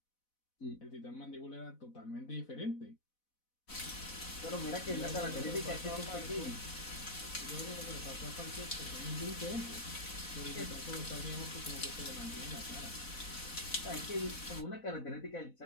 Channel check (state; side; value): late; right; 4.0 ms